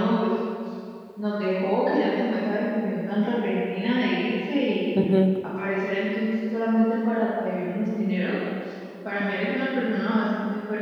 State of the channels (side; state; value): both; identical; correlation 1.00